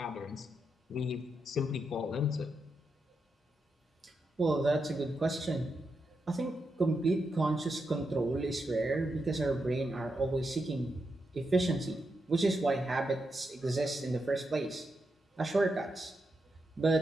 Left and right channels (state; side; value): normal; both; correlation 0.85